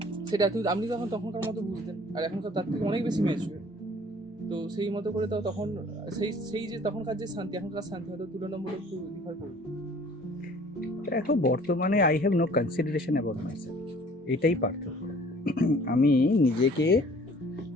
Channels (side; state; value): both; normal; correlation 0.52